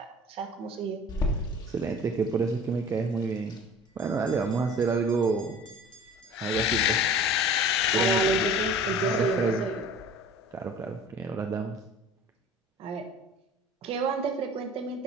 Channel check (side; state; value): both; normal; correlation 0.44